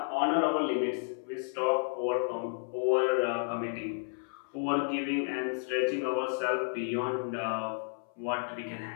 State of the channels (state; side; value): silent; right; 56 dB below the other